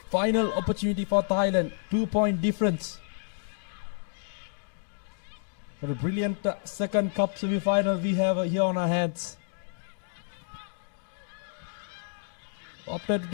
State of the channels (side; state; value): right; silent; digital silence